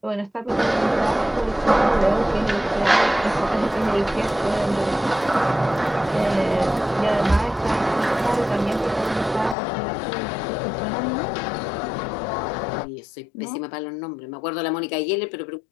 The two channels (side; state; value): right; drops out; at 9.6 s